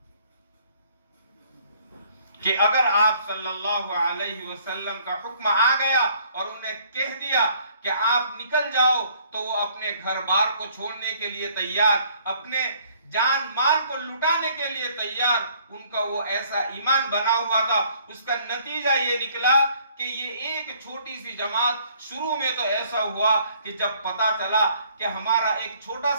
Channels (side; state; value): both; inverted; correlation -0.61